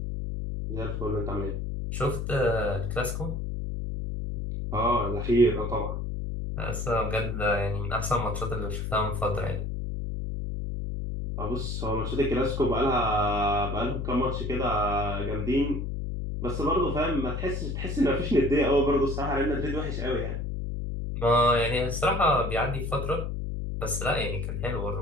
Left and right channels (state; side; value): noise; left; hum, 3 dB below the sound